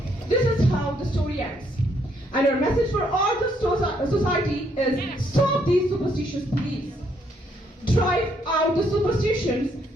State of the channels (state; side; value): normal; both; correlation 0.71